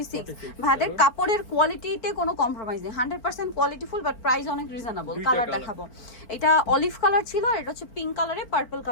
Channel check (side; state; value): right; late; 4.4 ms